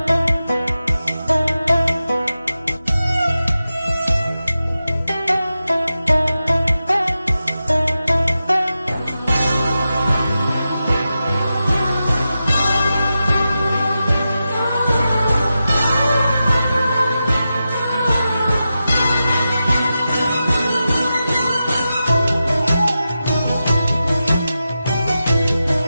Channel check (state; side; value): inverted; both; correlation -0.91